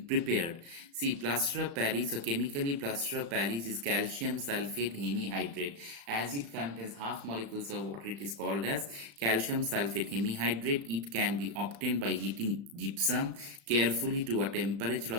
prepared? See, plaster of Paris, or chemically plaster of Paris, is calcium sulfate hemihydrate. As it contains half molecules of water, it is called as calcium sulfate hemihydrate. It can be obtained by heating gypsum carefully to a temperature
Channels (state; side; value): late; left; 35 ms